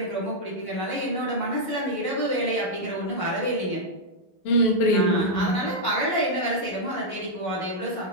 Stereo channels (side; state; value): right; late; 11 ms